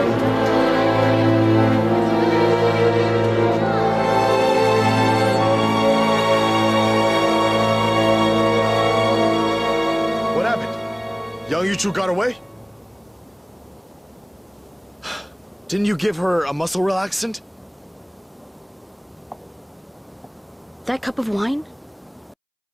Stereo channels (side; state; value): both; identical; correlation 1.00